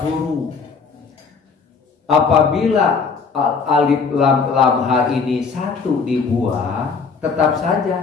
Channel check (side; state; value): right; quieter; 5.2 dB